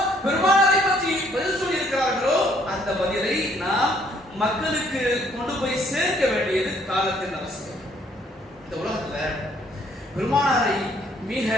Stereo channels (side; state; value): both; normal; correlation 0.65